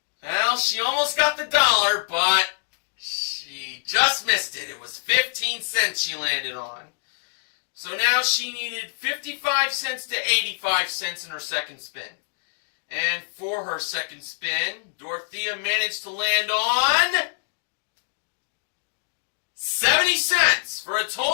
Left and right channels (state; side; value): silent; right; digital silence